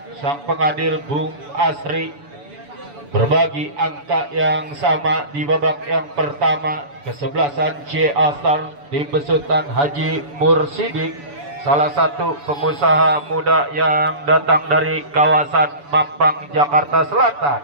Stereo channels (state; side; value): late; left; 7.0 ms